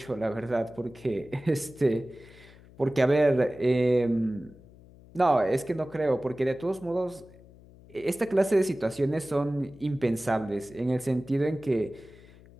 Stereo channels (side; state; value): left; noise; hum, 23 dB below the sound